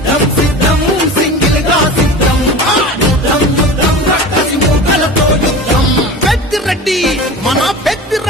సిద్ధం సింగిల్ గా సిద్ధం, యుద్ధం యుద్ధం రక్కసి మూకలతో యుద్ధం. పెద్దిరెడ్డి మన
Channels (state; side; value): normal; both; correlation 0.34